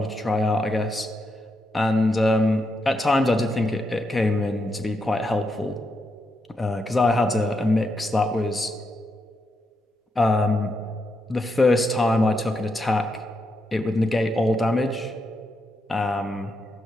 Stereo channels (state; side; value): normal; both; correlation 0.82